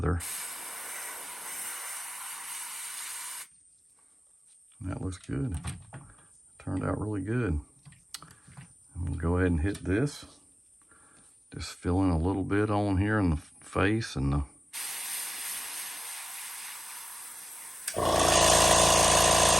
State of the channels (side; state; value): both; normal; correlation 0.97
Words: That looks good. Turned out really good. And we'll go ahead and hit this. Just fill in a little bit on here in the face and the